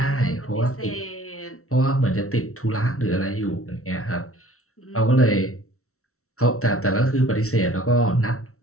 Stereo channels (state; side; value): late; right; 0.63 ms